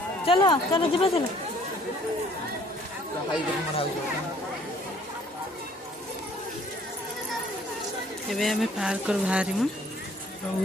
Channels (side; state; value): both; normal; correlation 0.59